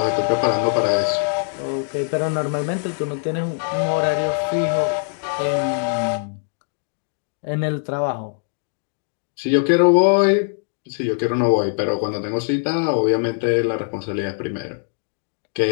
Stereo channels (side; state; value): right; silent; digital silence